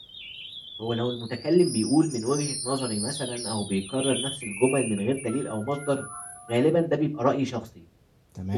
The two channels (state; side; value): identical; both; correlation 1.00